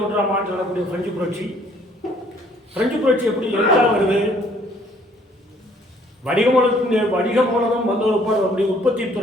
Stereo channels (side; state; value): both; normal; correlation 0.61